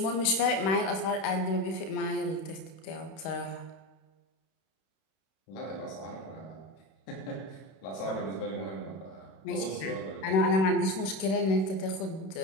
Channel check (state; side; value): late; right; 31 ms